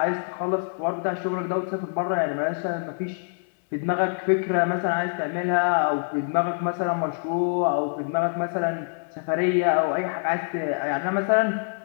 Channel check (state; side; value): silent; right; 62 dB below the other